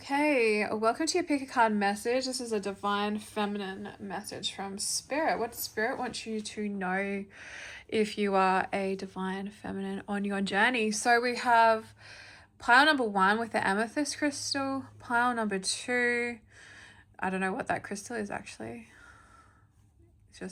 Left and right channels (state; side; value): identical; both; correlation 1.00